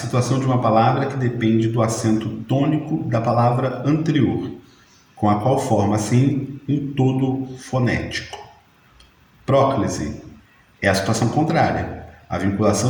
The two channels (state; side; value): identical; both; correlation 1.00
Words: de uma palavra que depende do acento tônico da palavra anterior, com a qual forma, assim, um todo fonético. Próclise é a situação contrária, a